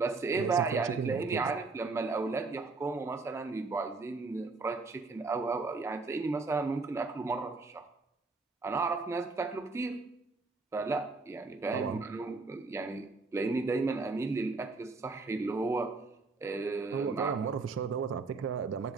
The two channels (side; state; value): left; quieter; 3.9 dB